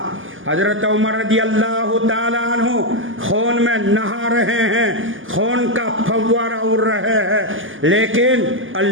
حضرت عمر رضی اللہ تعالیٰ عنہ خون میں نہا رہے ہیں، خون کا فوارہ اڑ رہے ہیں، لیکن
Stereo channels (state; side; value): late; left; 0.58 ms